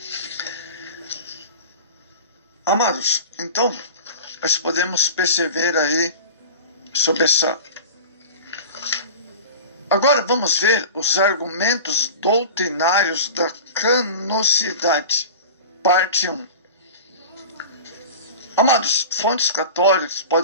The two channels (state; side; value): inverted; both; correlation -0.34